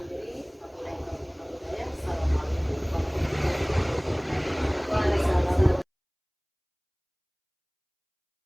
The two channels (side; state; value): both; identical; correlation 1.00